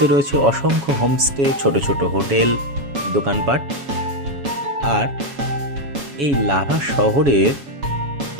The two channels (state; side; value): late; left; 7.2 ms